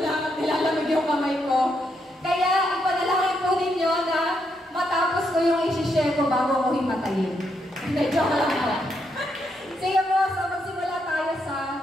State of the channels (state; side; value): normal; both; correlation 0.79